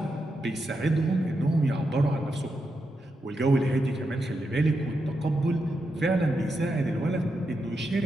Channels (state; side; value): normal; both; correlation 0.85